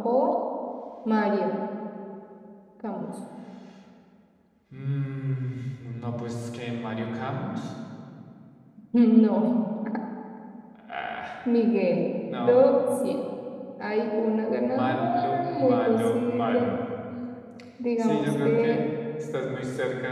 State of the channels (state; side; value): identical; both; correlation 1.00